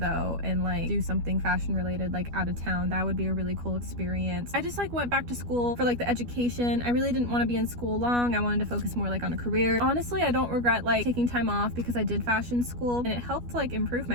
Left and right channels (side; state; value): left; late; 12 ms